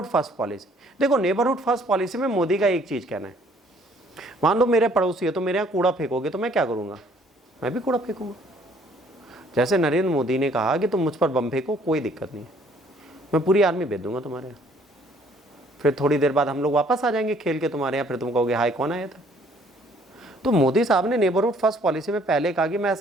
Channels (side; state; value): both; normal; correlation 0.61